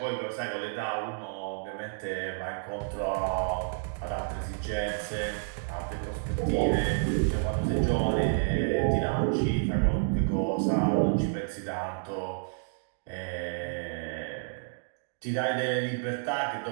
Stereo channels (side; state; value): left; silent; digital silence